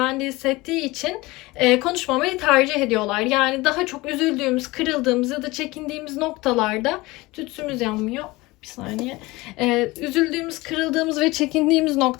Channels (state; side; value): quieter; right; 21.3 dB